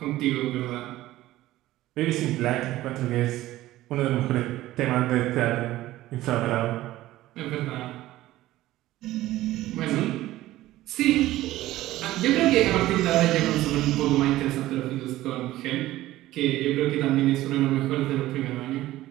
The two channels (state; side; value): quieter; left; 15.8 dB